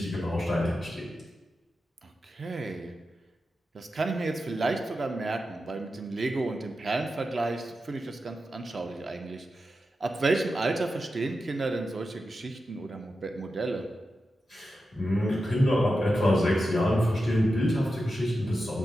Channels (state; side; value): normal; both; correlation 0.90